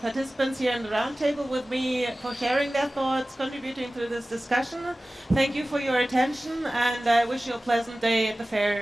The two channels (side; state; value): both; normal; correlation 0.97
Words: participants here in the roundtable with me for sharing their thoughts, contributing to this discussion. Thank you for your attention, and I wish you a pleasant day at the